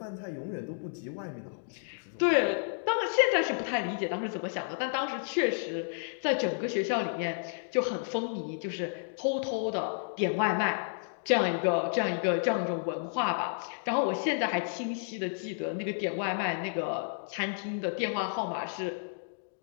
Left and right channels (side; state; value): right; silent; digital silence